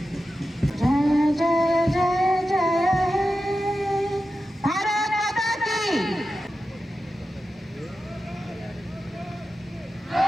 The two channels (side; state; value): both; normal; correlation 0.92